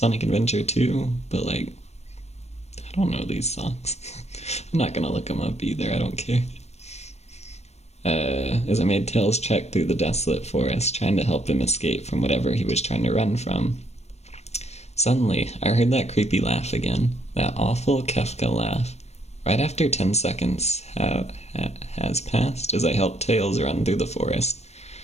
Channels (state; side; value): late; right; 0.31 ms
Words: Adventure 2, but like, I don't know these songs. I'm not gonna look them up either, I don't care. As I made Tails trek through the desolate forest, trying to help him escape from whatever he was trying to run from. Suddenly, I heard that creepy laugh again, that awful Kefka laugh. Right after 10 seconds has passed as I helped Tails run through the forest.